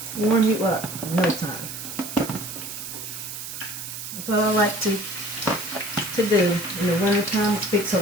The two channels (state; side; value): noise; right; hiss, 8 dB below the sound